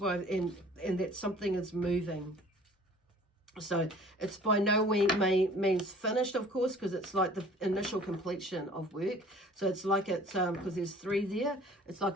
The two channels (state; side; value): normal; both; correlation 0.50